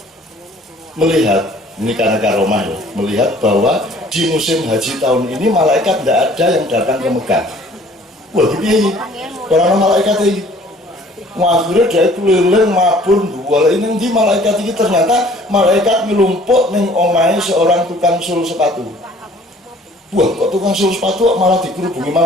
melihat, ini karena karomah ya, melihat bahwa di musim haji tahun ini malaikat tidak ada yang datang ke Mekah. Wah, gini, orang malaikat ini. Akhirnya dia keliling mabur dua ini di malaikat ini, ternyata malaikat melumpuk ning omahe seorang tukang sul sepatu. Wah, kok tukang sul sepatu malah dikerubungi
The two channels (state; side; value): normal; both; correlation 0.54